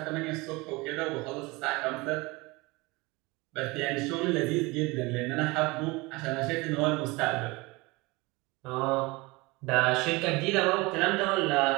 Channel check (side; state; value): left; quieter; 23.9 dB